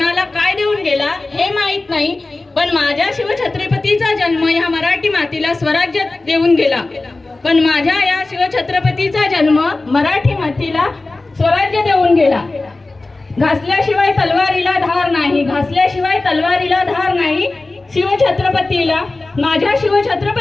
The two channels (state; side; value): quieter; right; 3.2 dB